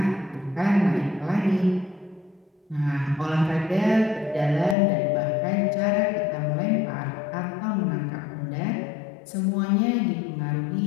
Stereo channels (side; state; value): right; drops out; at 4.8 s